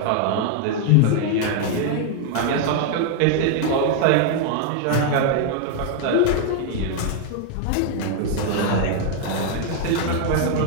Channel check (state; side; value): different; both; correlation 0.00